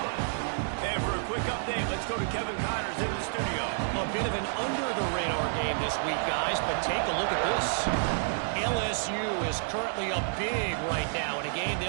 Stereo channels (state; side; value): silent; left; digital silence